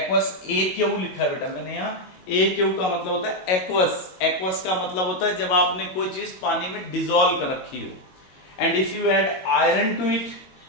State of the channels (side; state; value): right; late; 22 ms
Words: AQ लिखा है बेटा मैंने यहाँ, AQ का मतलब होता है एक्वस। एक्वस का मतलब होता है जब आपने कोई चीज पानी में डिसॉल्व कर रखी हो। And if you add iron to it,